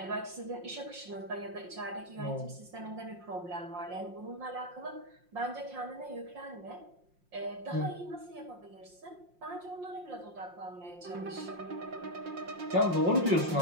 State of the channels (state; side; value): late; left; 5.6 ms